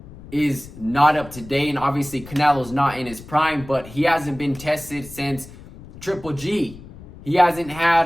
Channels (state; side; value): noise; left; rumble, 17 dB below the sound